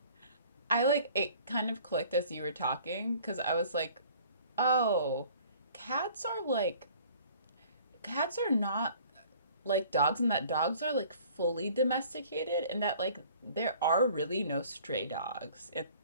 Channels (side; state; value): both; inverted; correlation -0.52